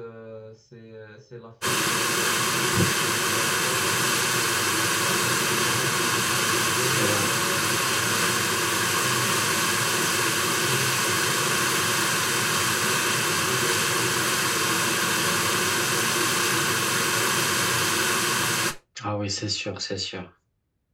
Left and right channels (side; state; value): both; identical; correlation 1.00